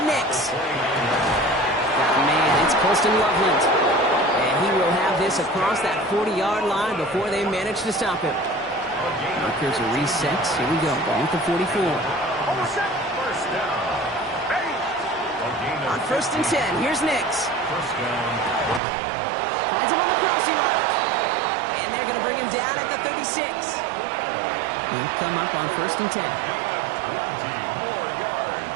Nix. Man, it's Colston Loveland. And he will have this across that 40-yard line before they manage to stop him. Markers are reset. Here we go. Ball at the 44. On 1st and 10, here's Nix. Finds him on the crossing route. And they're going to bring him down at the 36. He'll come up on 1st and 10.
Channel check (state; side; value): drops out; left; at 18.8 s